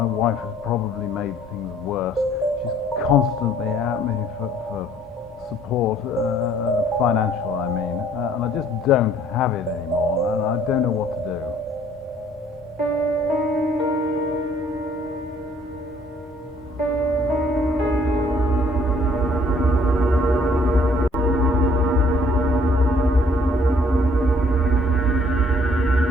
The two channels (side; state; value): both; normal; correlation 0.60